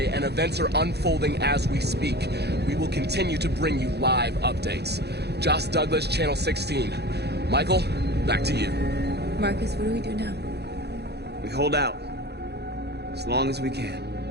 and events are unfolding as we speak. We will continue to bring you live updates. Josh Douglas, Channel 16. Michael, back to you. Marcus, what do we do now? We hold out. As long as we can.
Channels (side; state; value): left; late; 0.48 ms